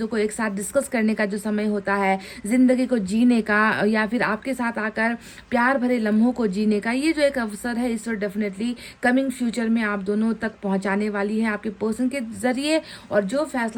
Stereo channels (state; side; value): identical; both; correlation 1.00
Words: को एक साथ डिस्कस करने का जो समय होता है, ज़िंदगी को जीने का या फिर आपके साथ आकर प्यार भरे लम्हों को जीने का, ये जो एक अवसर है इस वक्त डेफिनेटली कमिंग फ्यूचर में आप दोनों तक पहुंचाने वाली है आपके पर्सन के ज़रिए। और जो